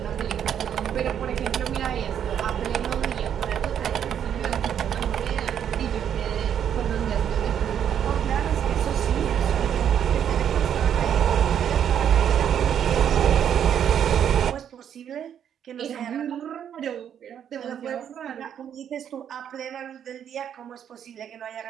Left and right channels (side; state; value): left; quieter; 9.1 dB